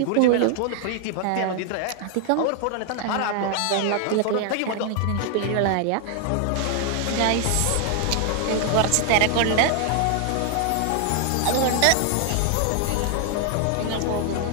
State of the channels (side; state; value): both; different; correlation 0.00